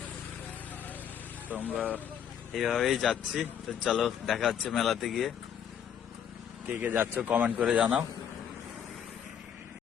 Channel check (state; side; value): quieter; right; 8.8 dB